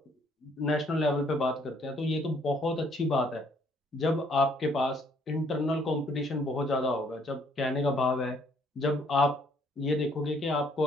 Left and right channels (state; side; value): normal; both; correlation 0.65